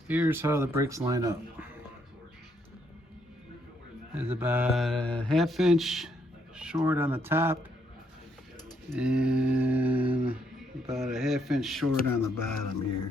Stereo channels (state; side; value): normal; both; correlation 0.73